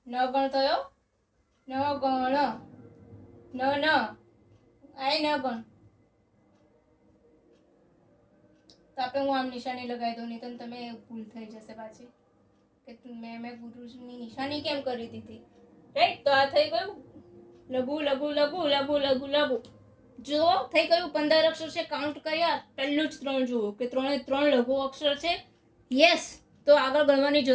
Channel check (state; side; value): identical; both; correlation 1.00